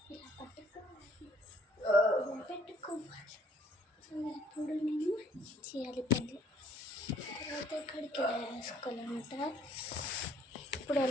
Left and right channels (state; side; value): normal; both; correlation 0.61